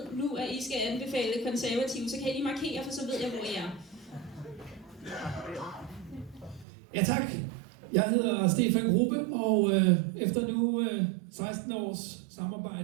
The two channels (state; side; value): drops out; left; at 6.7 s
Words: nu, at I skal anbefale konservative, så kan I lige markere, for så ved jeg, hvor I er. Ja, tak. Jeg hedder Stefan Gruppe, og efter nu 16 års